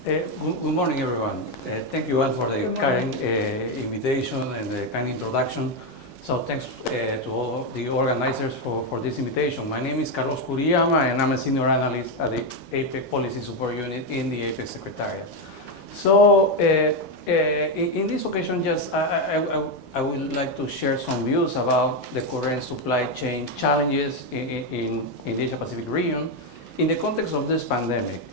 Good morning, everyone. Thank you all for the kind invitation and the kind introduction. So thanks to all the organizers for this invitation. My name is Carlos Kuriyama, and I'm a senior analyst at the Apec Policy Support Unit in the Apec Secretariat. So in this occasion, just I would like to share some views about the current supply chain challenges in the Asia-Pacific region in the context of this pandemic.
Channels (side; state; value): both; normal; correlation 0.06